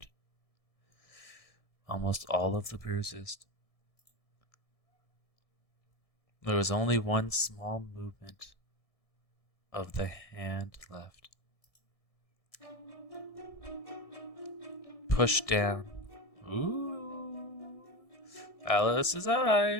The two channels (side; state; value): right; late; 1.6 ms